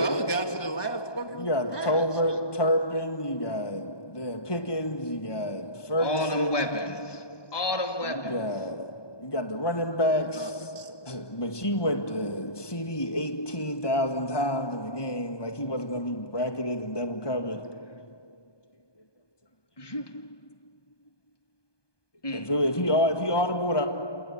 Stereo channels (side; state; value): right; late; 1.2 ms